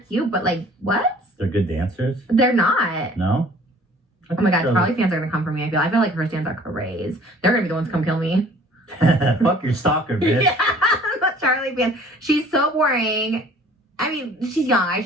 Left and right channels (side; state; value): both; normal; correlation 0.51